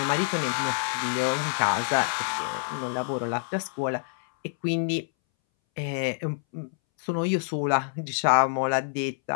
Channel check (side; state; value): right; silent; 60 dB below the other